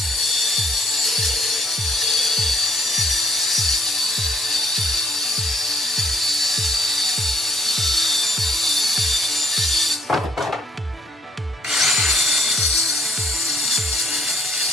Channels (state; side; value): normal; both; correlation 0.66